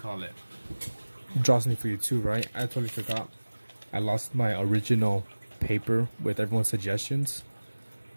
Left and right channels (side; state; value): both; inverted; correlation -1.00